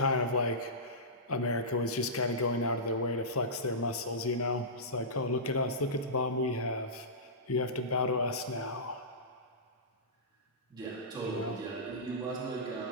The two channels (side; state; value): both; normal; correlation -0.18